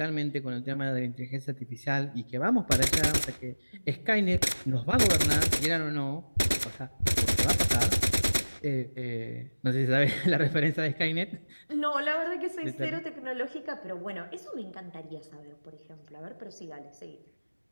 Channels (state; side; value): inverted; both; correlation -1.00